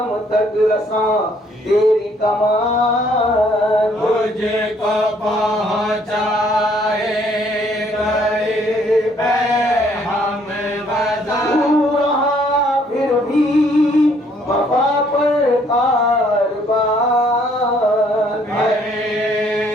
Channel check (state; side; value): normal; both; correlation 0.65